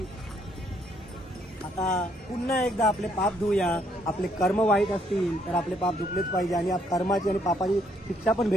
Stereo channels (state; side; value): normal; both; correlation 0.70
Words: आता पुन्हा एकदा आपले पाप धुऊया। आपले कर्म वाईट असतील तर आपले पाप धुतलेच पाहिजे आणि या कर्माची आणि पापाची शिक्षा पण